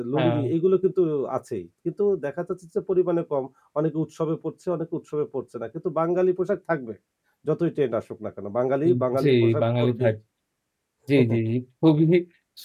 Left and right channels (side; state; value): both; identical; correlation 1.00